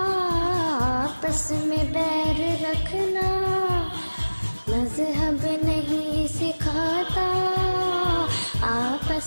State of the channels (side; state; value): both; inverted; correlation -1.00